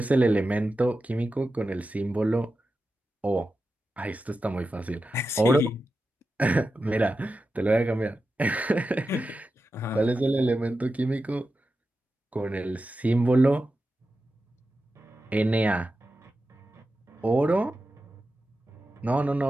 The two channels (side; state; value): both; normal; correlation 0.92